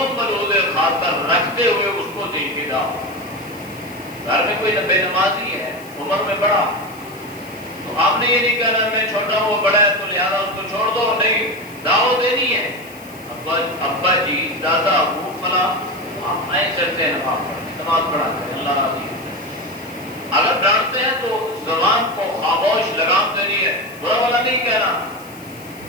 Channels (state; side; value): noise; left; hiss, 21 dB below the sound